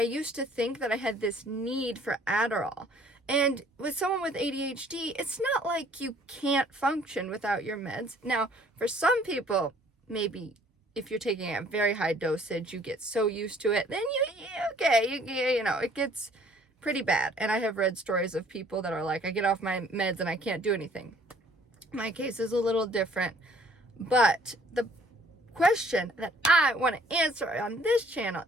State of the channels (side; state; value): both; normal; correlation 0.58